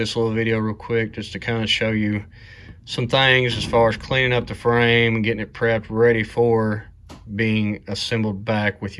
little video real quick just to kind of show you some things as far as cleaning up the frame and getting it prepped ready for being assembled back with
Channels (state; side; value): identical; both; correlation 1.00